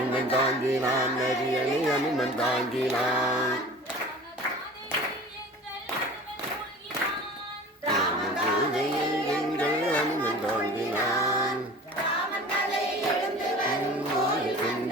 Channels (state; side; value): normal; both; correlation 0.41